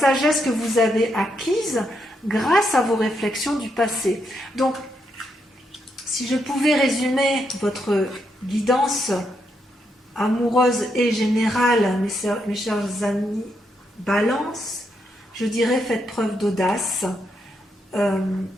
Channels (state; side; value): normal; both; correlation 0.80